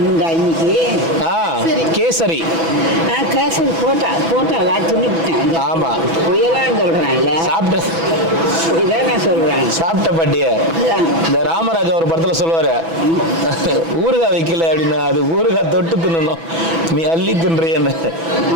உண்டா இன்னைக்கு? கேசரி. கேசரி போட்டா துணிவிட்டேன். ஆமா, புயலான்னு சொல்றேன்ல. இதான் சொல்றேன். சாப்பிட்ட பாட்டிய இந்த ராமராஜா ஒரு படத்துல சொல்லுவாரு, ஊறுகாய் வைக்கல அப்படின்னா அது ஊறுகாய் தொட்டு தின்னணும், நீ அள்ளி தின்றியன்னு.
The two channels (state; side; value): late; left; 6.1 ms